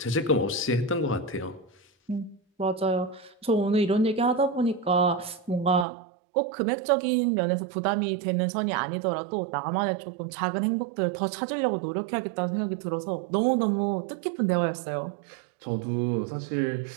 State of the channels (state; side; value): drops out; left; at 5.9 s